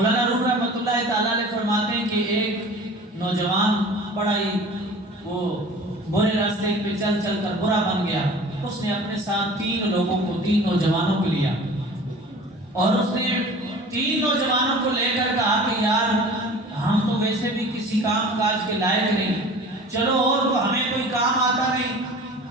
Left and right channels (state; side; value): normal; both; correlation 0.42